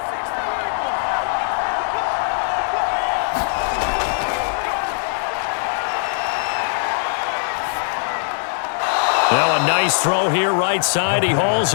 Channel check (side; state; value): right; silent; digital silence